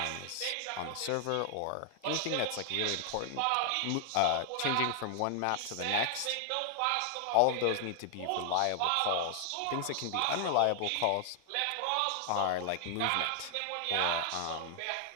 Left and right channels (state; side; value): different; both; correlation 0.00